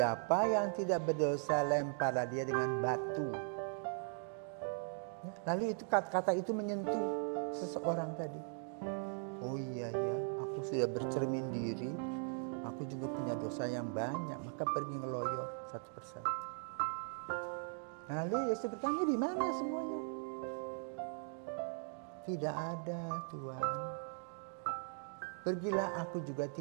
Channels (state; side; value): silent; left; 52 dB below the other